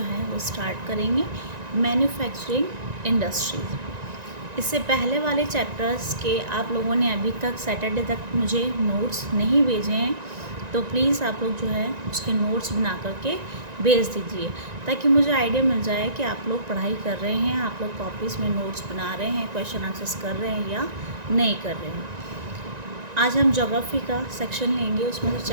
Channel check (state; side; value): late; left; 1.9 ms